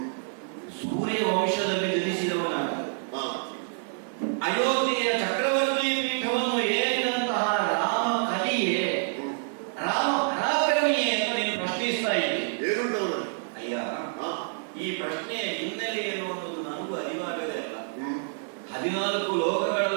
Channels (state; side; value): silent; left; digital silence